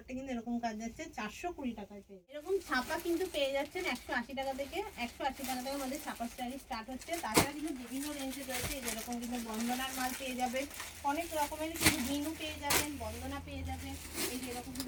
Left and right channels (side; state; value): both; identical; correlation 1.00